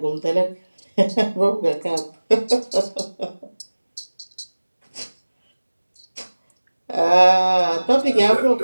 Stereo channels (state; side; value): inverted; both; correlation -1.00